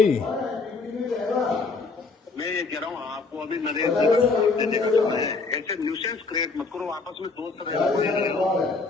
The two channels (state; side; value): quieter; right; 4.1 dB